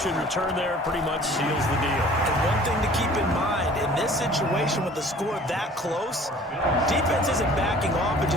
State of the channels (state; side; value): normal; both; correlation 0.49